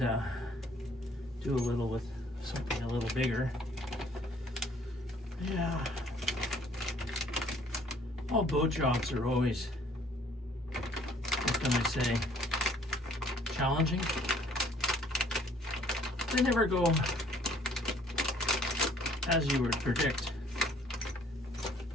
do a little with something a little bigger. Yeah. All boat jobs are always, what can I say, challenging. They never go as you would predict.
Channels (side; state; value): both; normal; correlation 0.59